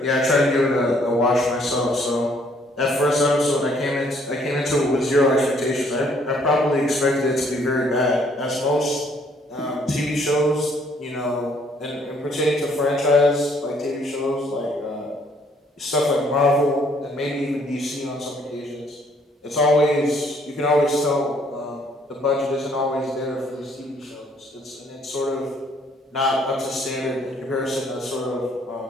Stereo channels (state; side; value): normal; both; correlation 0.64